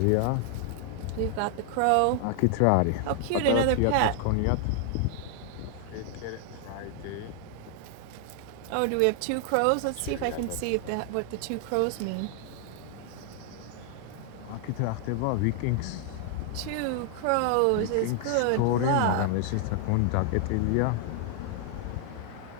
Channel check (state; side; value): different; both; correlation 0.00